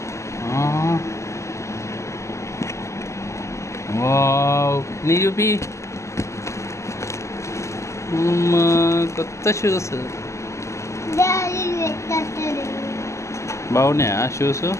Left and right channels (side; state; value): right; late; 0.14 ms